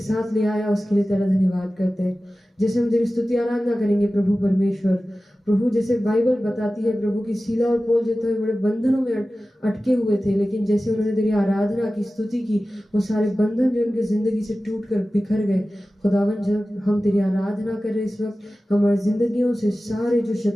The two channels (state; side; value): normal; both; correlation 0.95